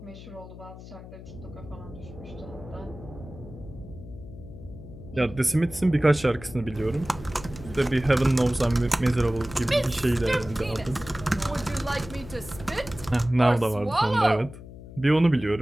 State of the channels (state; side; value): noise; left; hum, 15 dB below the sound